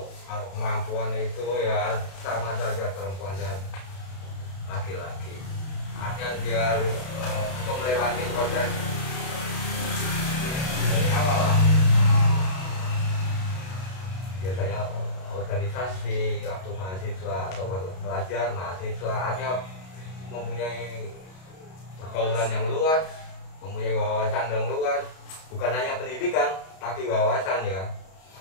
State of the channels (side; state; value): right; late; 32 ms